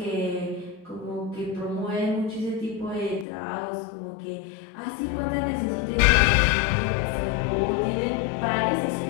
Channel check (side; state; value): right; drops out; at 3.2 s